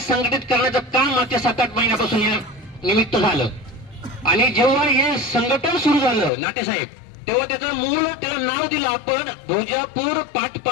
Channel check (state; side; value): drops out; right; at 6.3 s